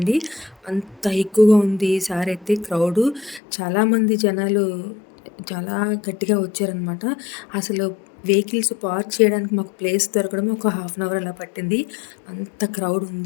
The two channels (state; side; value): drops out; right; at 3.4 s